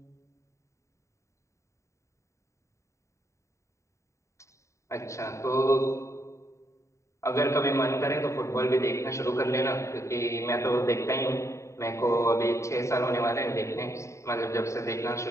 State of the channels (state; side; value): late; right; 0.14 ms